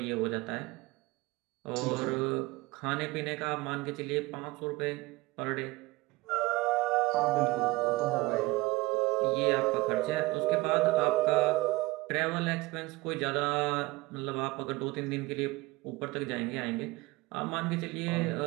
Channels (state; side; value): quieter; left; 21.0 dB